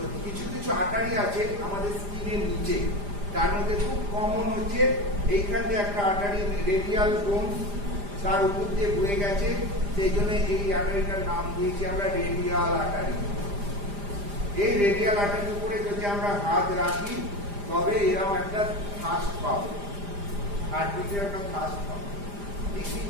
কিছু কিছু আর্টারি আছে আমাদের স্কিনের নিচে, তার মধ্যে খুব কমন হচ্ছে এইখান দিয়ে একটা আর্টারি রেডিয়াল বোন, তার উপর দিয়ে বয়ে গেছে, সেই জন্য এই আর্টারিটার নাম দিয়েছি আমরা রেডিয়াল আর্টারি। এই রেডিয়াল আর্টারির উপরে যদি আমরা হাত রাখি তবে এরকম একটা থাস্ট পাবো, হার্টবিটের একটা থাস্ট পাবো। দেখি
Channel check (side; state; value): left; late; 5.0 ms